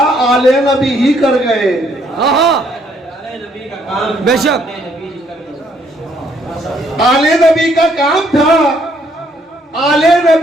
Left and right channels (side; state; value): both; normal; correlation 0.68